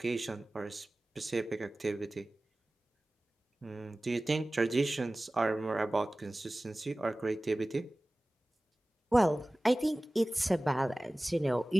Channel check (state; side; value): normal; both; correlation 0.98